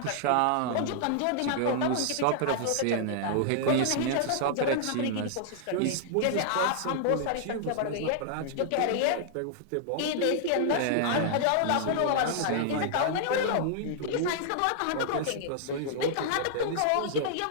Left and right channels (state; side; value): different; both; correlation -0.01